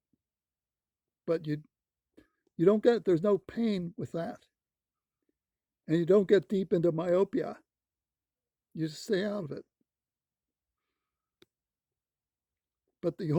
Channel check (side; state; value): both; identical; correlation 1.00